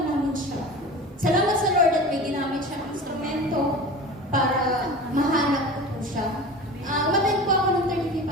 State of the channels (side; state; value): both; normal; correlation 0.34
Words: namin siya. Salamat sa Lord at may ginamit siyang instrumento para mahanap ko po siya. Umattend po ako ng 35th